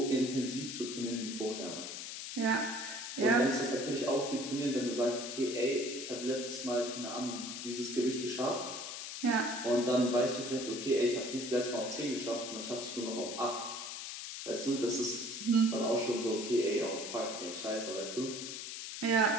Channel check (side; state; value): left; noise; hiss, 7 dB below the sound